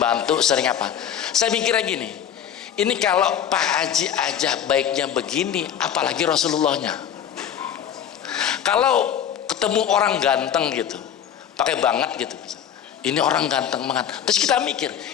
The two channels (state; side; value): quieter; right; 9.2 dB